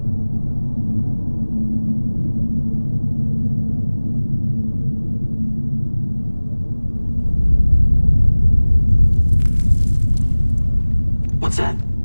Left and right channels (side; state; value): both; inverted; correlation -1.00